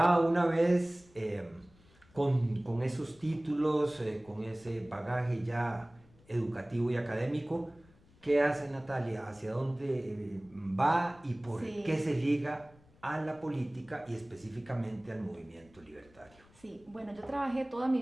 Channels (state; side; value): noise; left; rumble, 28 dB below the sound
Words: una vez con esos títulos, con ese bagaje ya educativo y académico, ¿qué hace Natalia? ¿Hacia dónde va y por qué se liga a la política y específicamente al movimiento libertario? Sí, bueno, yo trabajé toda mi